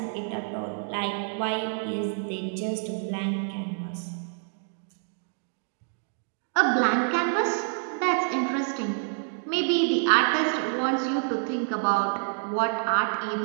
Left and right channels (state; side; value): silent; left; digital silence